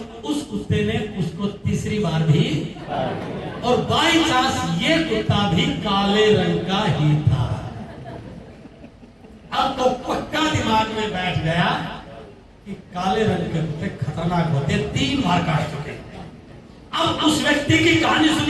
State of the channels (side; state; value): both; identical; correlation 1.00